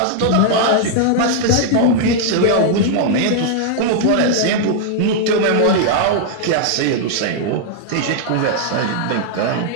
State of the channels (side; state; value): both; different; correlation 0.00